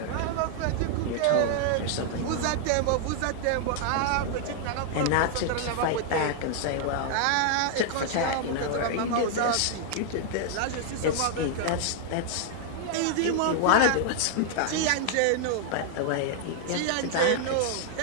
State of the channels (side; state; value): both; different; correlation -0.01